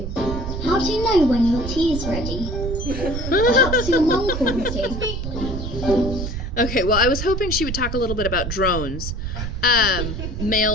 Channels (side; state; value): right; noise; rumble, 5 dB below the sound